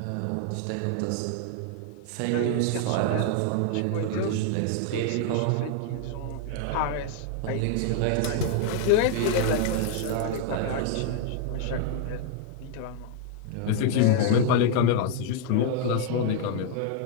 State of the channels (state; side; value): different; both; correlation 0.00